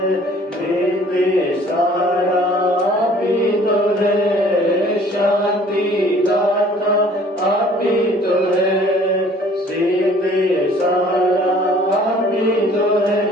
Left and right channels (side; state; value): both; normal; correlation 0.54